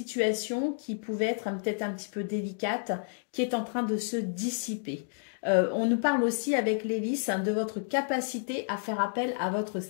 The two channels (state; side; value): silent; right; digital silence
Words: qui pouvait être peut-être un petit peu délicate, qui est en train de se dissiper. On nous parle aussi avec les lys de votre capacité à faire appel à votre